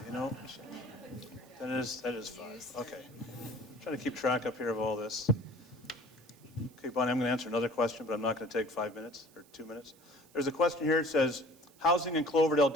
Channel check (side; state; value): right; noise; hiss, 27 dB below the sound